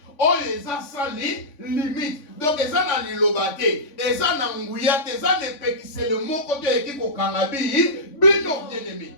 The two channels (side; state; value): right; late; 3.5 ms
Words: oyo eza sans limite donc eza na liloba te eza na nguya te eza na epekisele moko te eki kokanga bino bien aimé